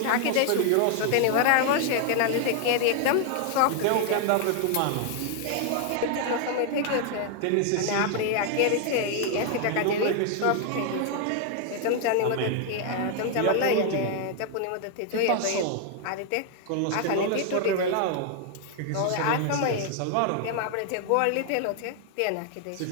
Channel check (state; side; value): different; both; correlation 0.00